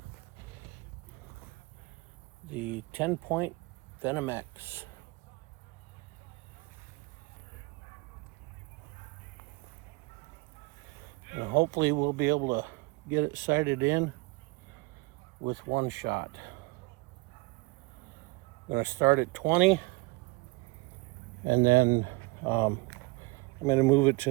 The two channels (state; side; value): quieter; left; 25.8 dB